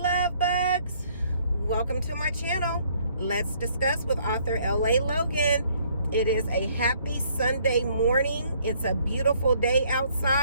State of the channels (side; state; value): both; inverted; correlation -0.64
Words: bugs. Welcome to my channel. Let's discuss with author L.A. Logan. It is a happy Sunday morning. It's a beautiful day